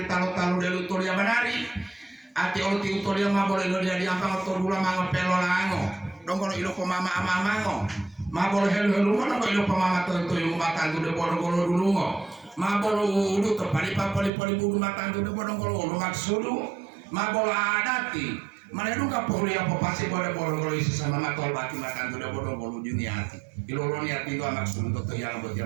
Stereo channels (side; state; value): left; drops out; at 14.3 s